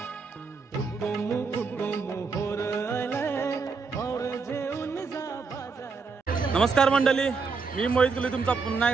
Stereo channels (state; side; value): quieter; left; 4.9 dB